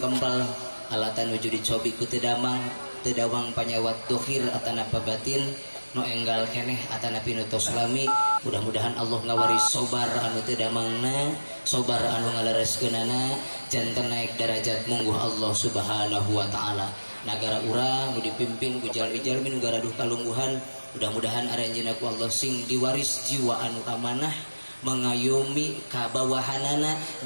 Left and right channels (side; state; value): both; inverted; correlation -1.00